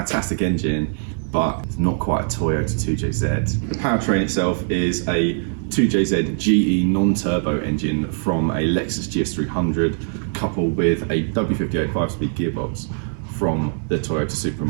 engine, but it's not quite a Toyota 2JZ. The powertrain itself is a 2JZ GE non-turbo engine from a Lexus GS300 coupled with a W58 5-speed gearbox from the Toyota Supra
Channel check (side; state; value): left; silent; 62 dB below the other